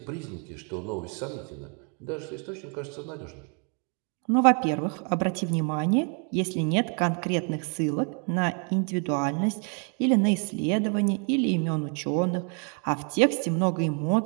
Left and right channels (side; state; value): left; quieter; 39.5 dB